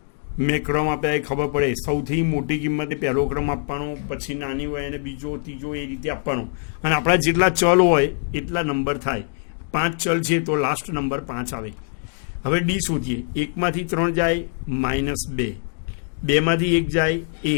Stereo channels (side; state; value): right; silent; 63 dB below the other